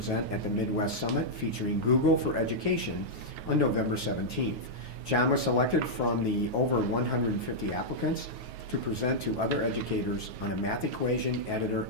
at the Midwest Summit featuring Google for Education on November 17th. John was selected from the over 150 applicants to present to other educators on a math equation editor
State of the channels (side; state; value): left; late; 9.4 ms